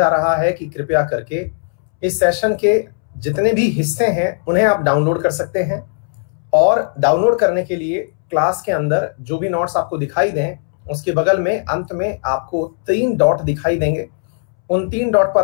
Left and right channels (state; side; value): silent; right; 68 dB below the other